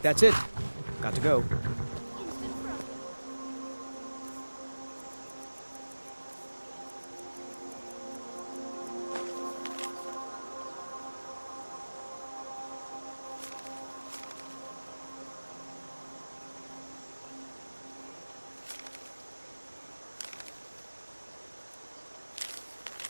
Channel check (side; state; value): both; inverted; correlation -1.00